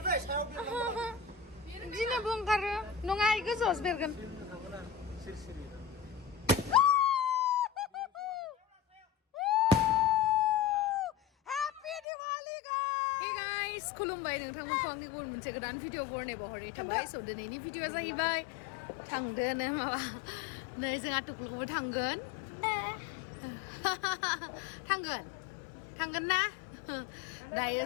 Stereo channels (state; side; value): drops out; right; at 12.0 s